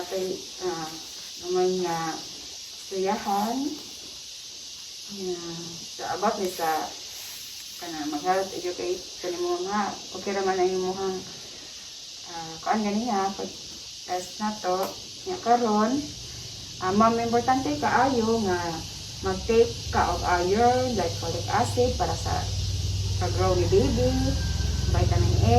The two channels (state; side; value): identical; both; correlation 1.00